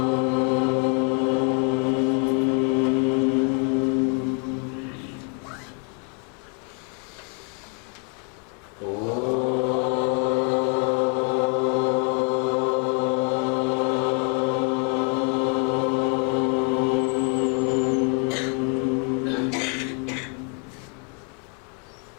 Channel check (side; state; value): right; quieter; 37.7 dB